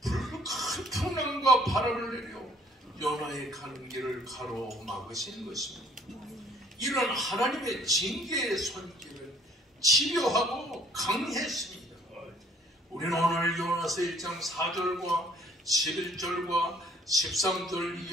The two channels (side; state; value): both; normal; correlation 0.59